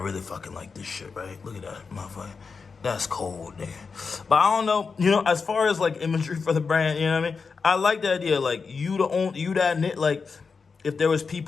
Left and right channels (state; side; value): quieter; right; 5.1 dB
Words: fucking like this shit, right? Look at that, motherfucker. That's cold, nigga. But I don't know, you know, as far as like imagery for the brand, you know what I mean? I like the idea, like you that knit, like if there was